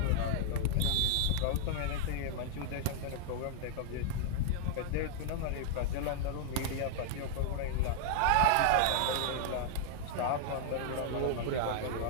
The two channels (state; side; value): different; both; correlation 0.00